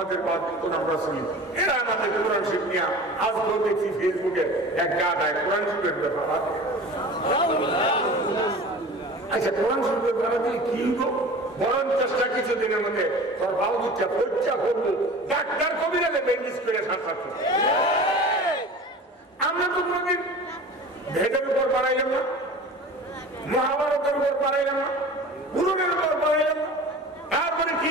বাদ কোন আমরা শুনি। এরা আমাদের কোরআন শিখ নিয়া আজকে দেখছি ফেসবুকে এক গাদায় কোরআন শিখের ব্যাপার। আচ্ছা, কোরআন শিখের ব্যাপার দিয়ে কি বরং চেষ্টা কিছুদিনের মধ্যে তোর বাবু দিচ্ছা পরীক্ষা করবো ডাক্তার কবিরালে ব্যান্ডেজ করে সাথে। আমরা তো কোনদিন ভেদের উপর বাড়াইলাম না, মহাভারতের উপর বাড়াইলাম না, পুরনের উপর বাড়াইলাম না, তারপরে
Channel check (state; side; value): normal; both; correlation 0.38